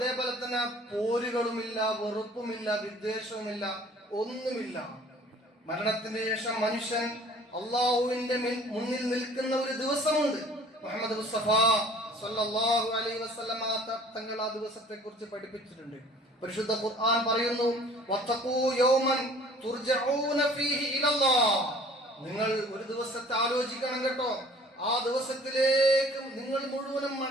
തന്നെ പോരുകളുമില്ല, വെറുപ്പുമില്ല, വിദ്വേഷവുമില്ല, ഒന്നുമില്ല. മരണത്തിന് ശേഷം മനുഷ്യൻ അള്ളാഹുവിന്റെ മുന്നിൽ നിൽക്കുന്ന ഒരു ദിവസമുണ്ട്. മുഹമ്മദ് മുസ്തഫ സല്ലല്ലാഹു അലൈഹി വസല്ലമ തങ്ങൾ ആ ദിവസത്തെ കുറിച്ച് പഠിപ്പിച്ചിട്ടുണ്ട്. പരിശുദ്ധ ഖുർആൻ പറയുന്നു, വത്തഖൂ യൗമൻ തുർജഊന ഫീഹി ഇലല്ലാഹ്, നിങ്ങൾ ഒരു ദിവസത്തെ ആലോചിക്കണം കേട്ടോ, ആ ദിവസത്തിലേക്ക് നിങ്ങൾ മുഴുവനും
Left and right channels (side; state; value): both; normal; correlation 0.51